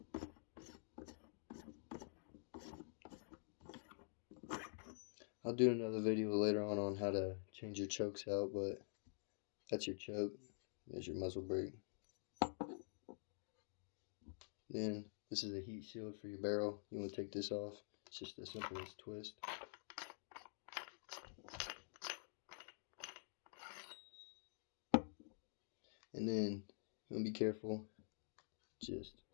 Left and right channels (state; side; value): silent; right; digital silence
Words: I'll do another video later on how to change your chokes out, but that's your choke. There's your muzzle brake. Then this is a heat shield for your barrel. You want to take this off. It's just as simple as twist. And then you want to be careful. Just